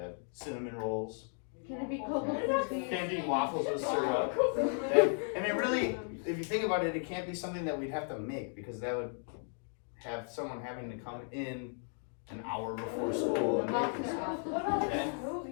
cinnamon rolls. Can it be coconut? Can't be waffles with syrup. And it really, if you think about it, it can't be something that we'd have to make because that would have someone having to come in an hour before school and make this stuff. Okay?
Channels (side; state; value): right; silent; 54 dB below the other